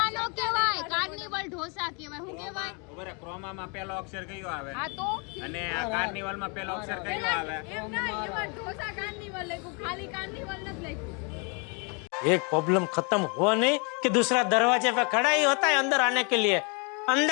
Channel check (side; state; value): right; quieter; 34.0 dB